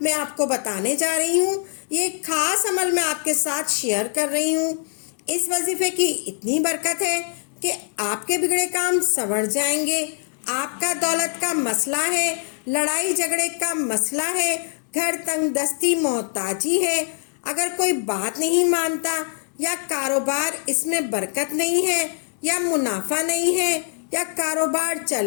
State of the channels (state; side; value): silent; right; 62 dB below the other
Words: میں آپ کو بتانے جا رہی ہوں۔ یہ ایک خاص عمل میں آپ کے ساتھ شیئر کر رہی ہوں۔ اس وظیفے کی اتنی برکت ہے کہ آپ کے بگڑے کام سنور جائیں گے۔ آپ کا دولت کا مسئلہ ہے، لڑائی جھگڑے کا مسئلہ ہے، گھر تنگ دستی محتاجی ہے، اگر کوئی بات نہیں مانتا یا کاروبار اس میں برکت نہیں ہے یا منافع نہیں ہے یا کاروبار چل